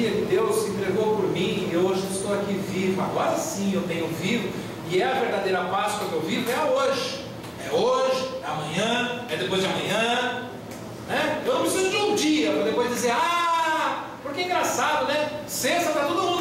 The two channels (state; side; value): identical; both; correlation 1.00